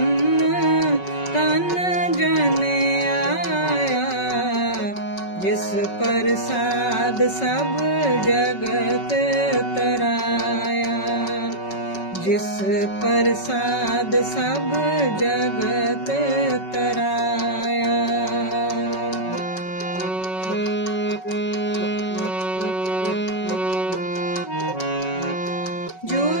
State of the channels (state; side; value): late; right; 5.3 ms